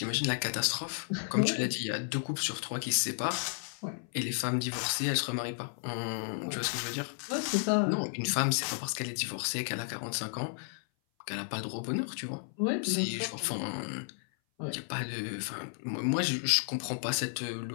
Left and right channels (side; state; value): right; silent; 56 dB below the other